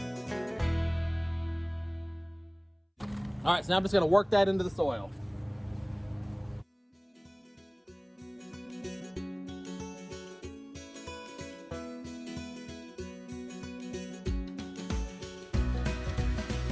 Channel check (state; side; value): identical; both; correlation 1.00